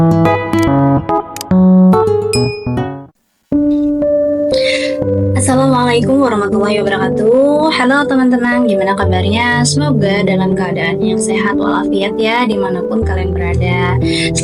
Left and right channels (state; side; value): identical; both; correlation 1.00